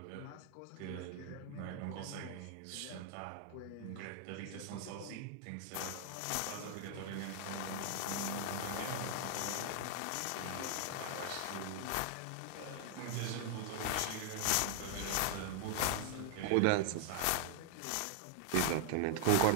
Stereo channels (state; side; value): different; both; correlation 0.00